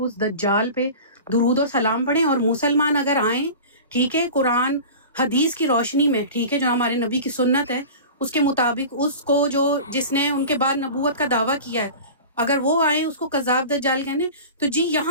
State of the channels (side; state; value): both; inverted; correlation -0.35